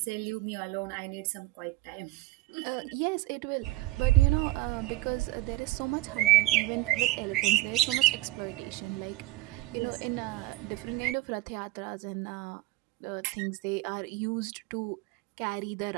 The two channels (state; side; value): quieter; left; 18.4 dB